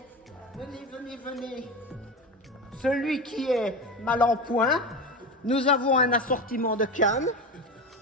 venez. Celui qui est mal en point, nous avons un assortiment de cannes.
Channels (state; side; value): normal; both; correlation 0.23